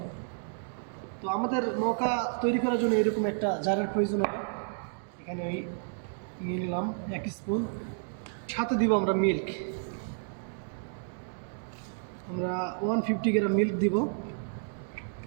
তো আমাদের মকা তৈরি করার জন্য এরকম একটা জারের প্রয়োজন হবে। এখানে আমি নিয়ে নিলাম 1 স্পুন। সাথে দিব আমরা মিল্ক। আমরা 150 গ্রাম মিল্ক দিব।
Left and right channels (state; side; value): silent; left; digital silence